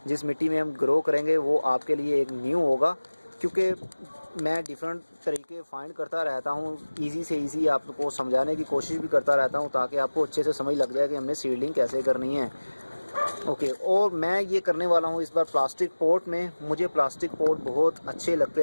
जिस मिट्टी में हम ग्रो करेंगे, वो आपके लिए एक न्यू होगा, क्योंकि मैं डिफरेंट तरीके फाइंड करता रहता हूँ, इजी से इजी आपको समझाने की कोशिश भी करता रहता हूँ, ताकि आपको अच्छे से समझ लग जाए कि हमने सीडलिंग कैसे करनी है। ओके, और मैं ये करने वाला हूँ इस बार प्लास्टिक पॉट में। मुझे प्लास्टिक पॉट बहुत अच्छे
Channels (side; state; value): both; inverted; correlation -1.00